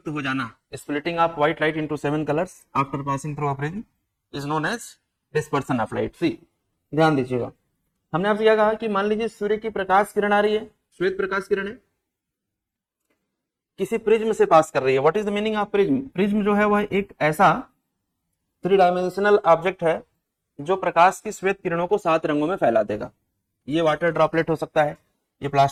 हो जाना, splitting of white light into 7 colours after passing through a prism is known as dispersion of light. See ध्यान दीजिएगा, हमने आपसे क्या कहा कि मान लीजिए सूर्य की प्रकाश किरण आ रही है, श्वेत प्रकाश किरण है, किसी प्रिज्म से पास कर रही है। What is the meaning of prism? Prism जो है वह एक ऐसा 3 डायमेंशनल ऑब्जेक्ट है जो प्रकाश की श्वेत किरणों को 7 रंगों में फैला देगा। ये वाटर ड्रॉपलेट हो सकता है, ये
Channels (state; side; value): identical; both; correlation 1.00